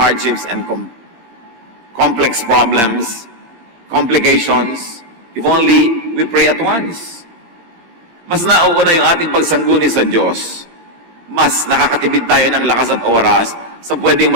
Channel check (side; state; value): left; late; 17 ms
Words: and complex problems, complications, if only we pray at once. Mas nauuna yung ating pagsangguni sa Diyos. Mas nakakatipid tayo ng lakas at oras sa pwedeng